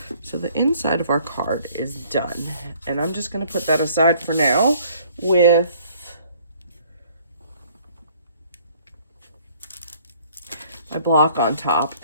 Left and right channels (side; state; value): both; inverted; correlation -0.58